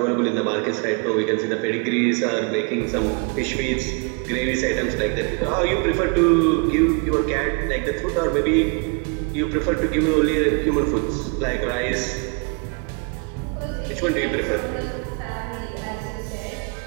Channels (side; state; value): left; quieter; 35.5 dB